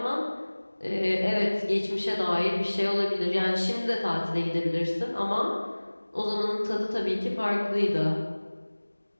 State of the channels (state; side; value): inverted; both; correlation -1.00